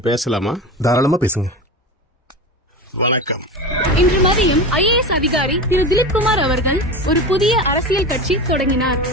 பேசலாமா? தாராளமா பேசுங்க. வணக்கம். இன்று மதியம் ஐஏஎஸ் அதிகாரி திரு திலீப் குமார் அவர்கள் ஒரு புதிய அரசியல் கட்சி தொடங்கினார்.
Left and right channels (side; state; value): both; normal; correlation 0.26